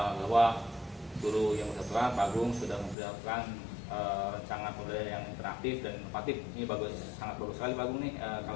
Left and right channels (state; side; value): drops out; right; at 3.0 s